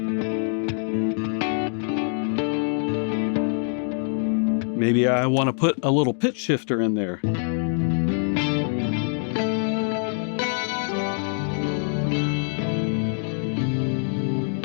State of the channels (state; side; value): silent; right; 61 dB below the other